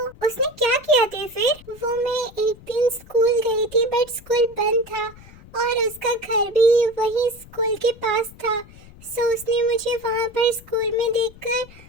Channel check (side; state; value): left; noise; rumble, 21 dB below the sound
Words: उसने क्या किया थे फिर, वो मैं एक दिन स्कूल गई थी, बट स्कूल बंद था और उसका घर भी वही स्कूल के पास था। सो उसने मुझे वहाँ पर स्कूल में